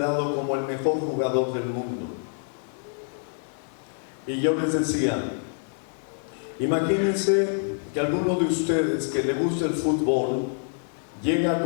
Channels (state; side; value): silent; right; digital silence